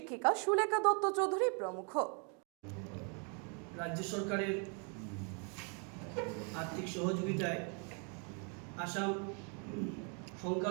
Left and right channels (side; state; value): left; quieter; 38.5 dB